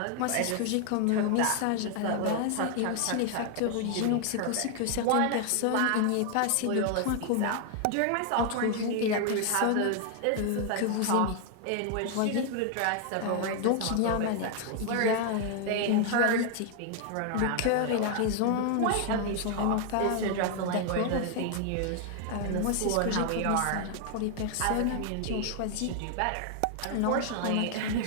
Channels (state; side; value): different; both; correlation 0.00